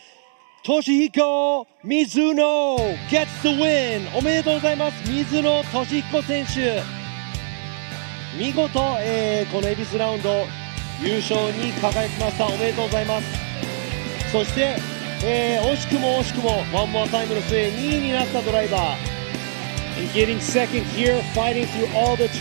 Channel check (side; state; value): left; silent; digital silence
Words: Toshihiko Mizuno gets the win. おめでとうございます。水野俊彦選手、見事、この恵比寿ラウンド優勝に輝きました。おめでとうございます。そして、惜しくもワンモアタイムの末2位になったドライバー、 And getting second here, fighting through all the